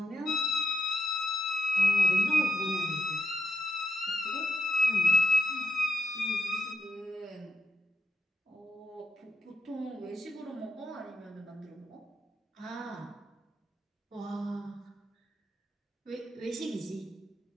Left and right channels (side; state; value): both; normal; correlation 0.86